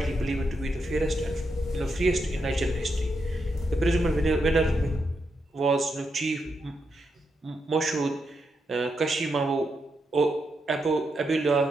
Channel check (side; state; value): both; normal; correlation 0.83